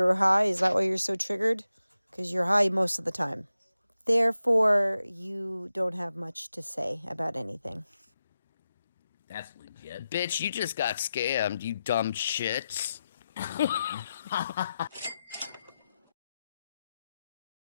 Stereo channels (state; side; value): inverted; both; correlation -0.91